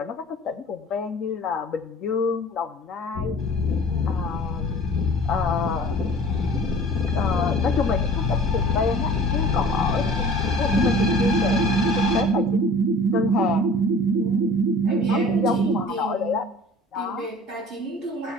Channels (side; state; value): both; normal; correlation 0.45